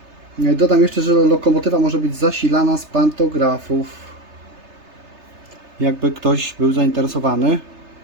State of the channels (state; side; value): late; left; 3.3 ms